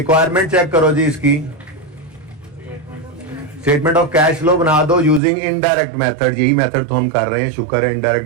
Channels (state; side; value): drops out; left; at 5.2 s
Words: चेक करो जी इसकी। स्टेटमेंट ऑफ कैश फ्लो बना दो यूजिंग इनडायरेक्ट मेथड, यही मेथड तो हम कर रहे हैं, शुक्र है